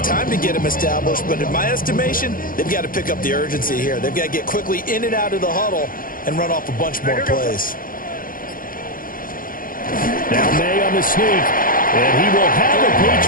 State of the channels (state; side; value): late; right; 0.41 ms